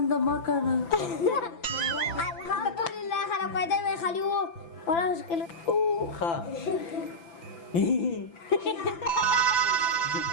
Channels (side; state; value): right; late; 5.9 ms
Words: مه کنه الحمدلله خلک پیدا وی خالي وو ولا مشکل ښه